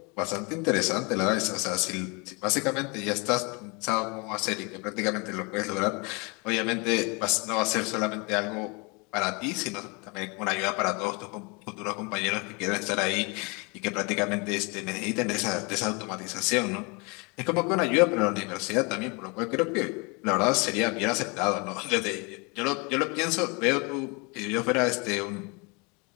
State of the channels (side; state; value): right; quieter; 30.3 dB